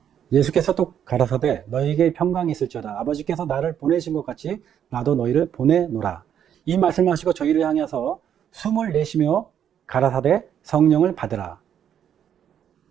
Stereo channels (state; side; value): quieter; left; 9.3 dB